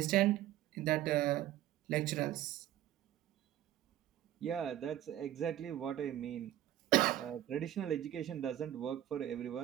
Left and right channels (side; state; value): left; quieter; 12.9 dB